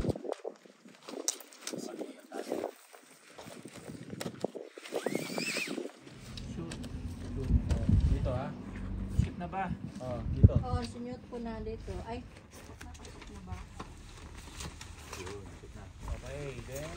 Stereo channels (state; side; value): identical; both; correlation 1.00